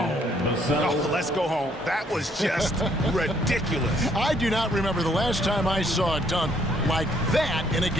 Oh, let's go home. That was just ridiculous. I do not remember the last time I saw a dunk like that in a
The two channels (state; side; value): normal; both; correlation 0.67